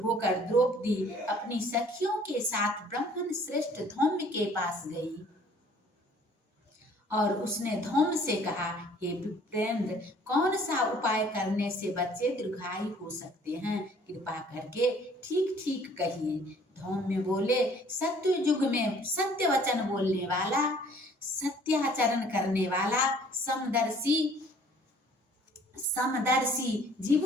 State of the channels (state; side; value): normal; both; correlation 0.56